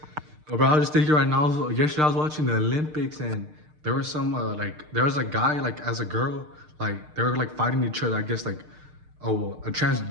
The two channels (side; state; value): left; late; 6.6 ms